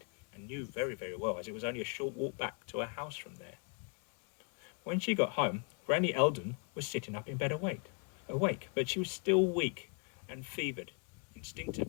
and knew very, very well, as it was only a short walk back to her house from there. When she got home, Granny Eldon was sitting up in bed awake, but she was still weak and fevered.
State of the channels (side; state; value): right; quieter; 37.1 dB